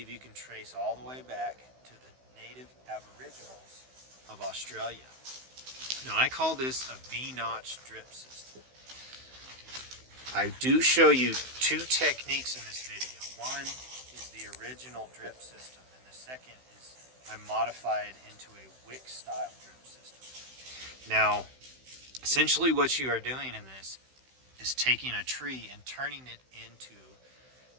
you can trace all the way back to the native aboriginals of Australia. Now I call this a V-notch drip system. I do show you two techniques in this video. One is the original drip system, and the second is I modified into a wick style drip system. Now, essentially what you are doing in this is taking a tree and turning it into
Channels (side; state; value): left; late; 16 ms